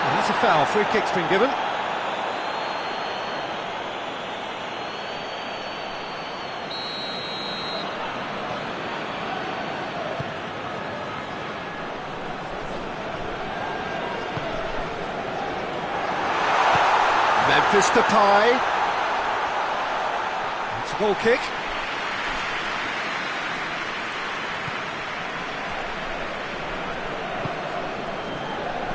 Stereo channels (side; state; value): both; identical; correlation 1.00